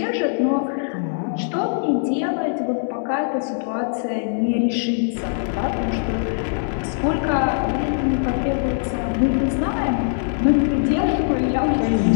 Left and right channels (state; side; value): silent; right; 64 dB below the other